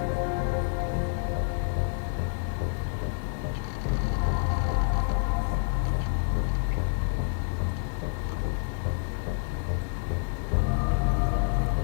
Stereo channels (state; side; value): silent; right; digital silence